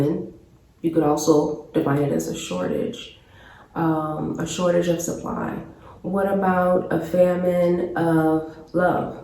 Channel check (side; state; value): both; identical; correlation 1.00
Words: you could also define it as a shortage of supply. What about a famine of love?